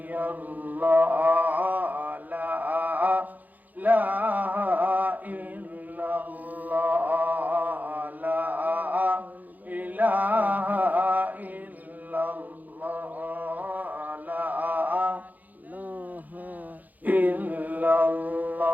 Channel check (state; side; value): late; left; 0.081 ms